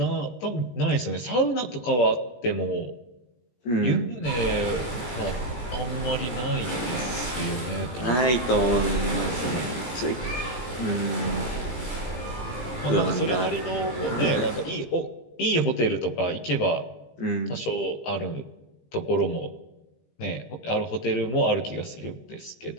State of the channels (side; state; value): right; late; 17 ms